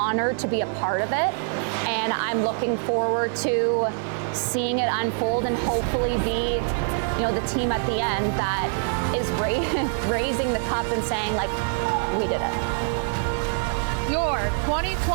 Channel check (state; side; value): silent; left; digital silence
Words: to be a part of it, and I'm looking forward to seeing it unfold and hopefully be, the team at the end that is raising the cup and saying, like, we did it. Your